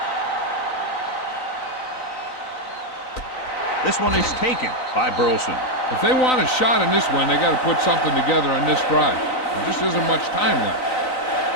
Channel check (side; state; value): right; late; 3.9 ms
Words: This one is taken by Burleson. If they want a shot in this one, they got to put something together on this drive. There just isn't much time left.